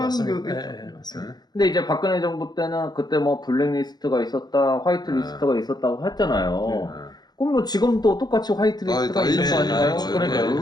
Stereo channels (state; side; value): late; right; 0.20 ms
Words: 게 맞습니다. 근데 이제 박근혜 정부 때는 그때 뭐 블랙리스트가 있었다, 화이트리스트가 있었다고 했잖아요. 그럼 뭐 지금도 똑같이 화이트리스트가 있는 거 아닌가요?